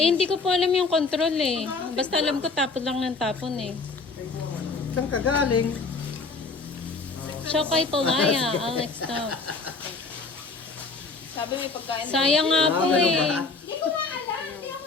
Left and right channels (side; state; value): right; quieter; 4.0 dB